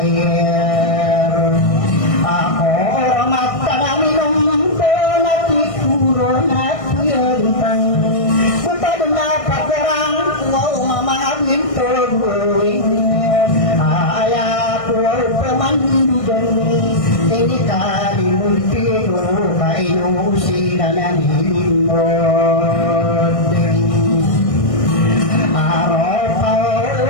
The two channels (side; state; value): right; late; 1.6 ms